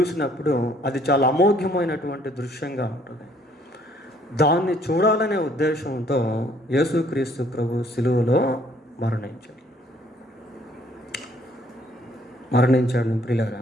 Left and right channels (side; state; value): both; normal; correlation 0.62